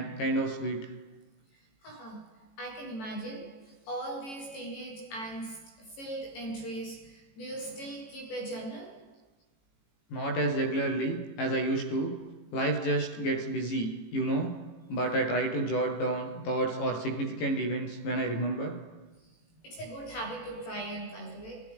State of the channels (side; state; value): right; late; 18 ms